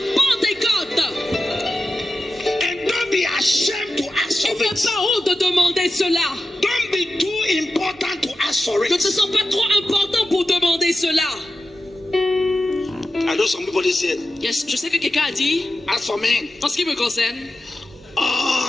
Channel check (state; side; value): normal; both; correlation 0.91